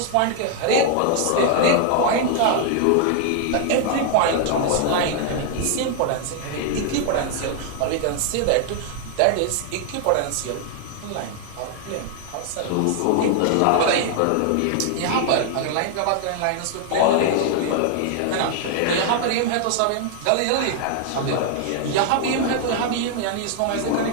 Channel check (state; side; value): different; both; correlation 0.00